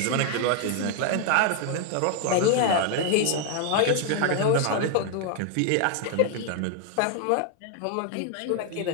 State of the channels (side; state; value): both; different; correlation 0.00